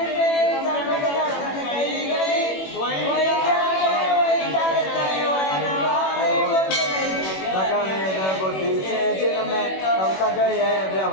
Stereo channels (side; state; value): right; late; 21 ms